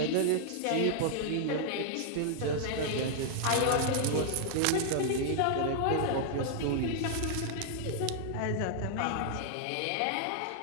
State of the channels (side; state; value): both; different; correlation -0.01